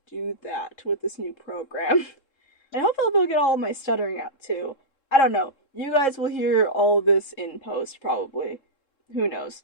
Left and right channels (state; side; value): late; right; 3.7 ms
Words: do that with this new program. And hopefully I'll be able to get all of my stuttering out too. I don't know. You guys will hear all of this in post, probably. Who knows?